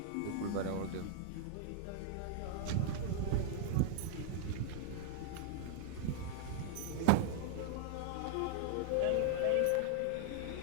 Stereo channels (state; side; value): different; both; correlation 0.00